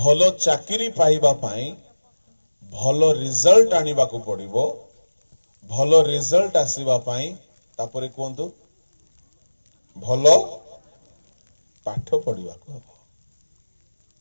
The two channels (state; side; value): inverted; both; correlation -1.00